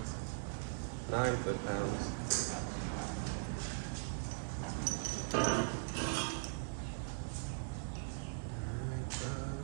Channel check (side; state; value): left; silent; digital silence